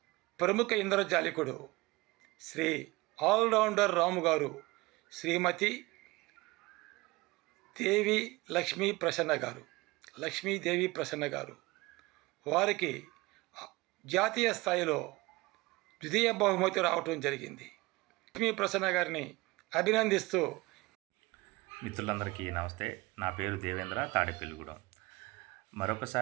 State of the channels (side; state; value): left; quieter; 22.2 dB